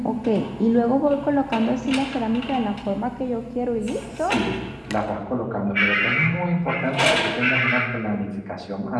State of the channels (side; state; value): both; identical; correlation 1.00